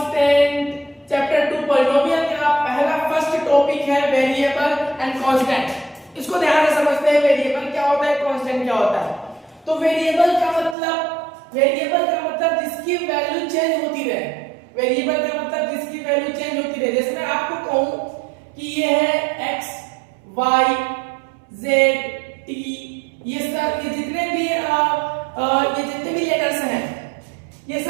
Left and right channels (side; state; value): left; drops out; at 10.8 s